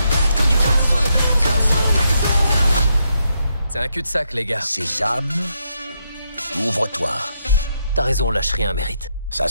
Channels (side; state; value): both; inverted; correlation -0.80